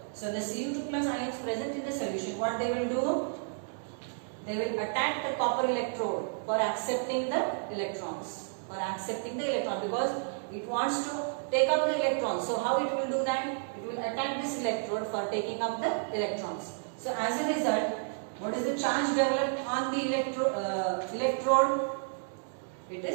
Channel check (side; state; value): left; silent; digital silence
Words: so the Cu2 plus ions present in the solution what they will do they will attack the copper electrode for accepting the electrons because it wants to take up the electrons so how it will do that it will attack this electrode for taking up the electrons so as a result what is the charge developed on the electrode it